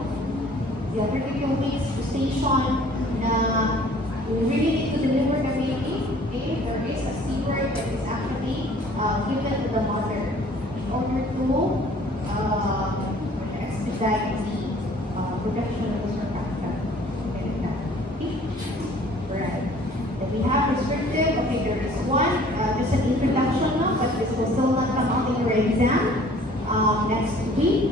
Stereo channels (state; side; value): normal; both; correlation 0.53